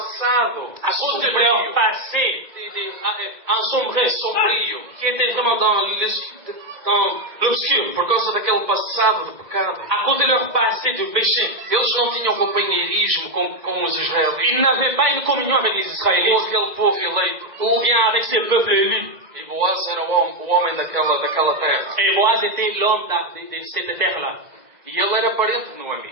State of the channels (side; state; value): left; late; 2.1 ms